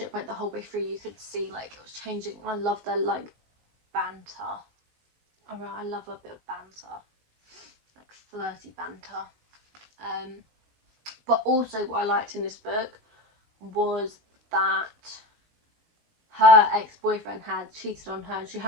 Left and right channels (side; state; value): left; late; 19 ms